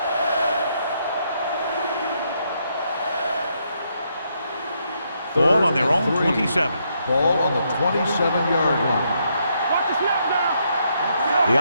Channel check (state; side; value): inverted; both; correlation -0.76